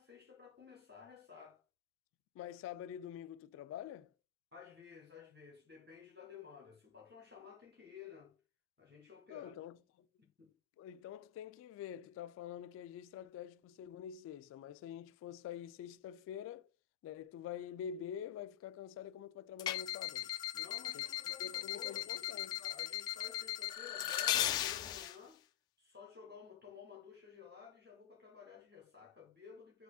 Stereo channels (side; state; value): right; quieter; 11.4 dB